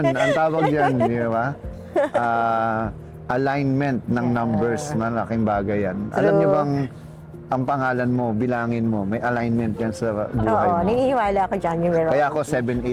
Ang tawag dyan, di ba? Alignment ng numbers. Malaking bagay yan. Alam niyo bang ang pangalan mo, bilangin mo, may alignment yan sa buhay Oo, mo. naniniwala ako dyan yung meron. Kaya ako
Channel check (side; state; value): both; identical; correlation 1.00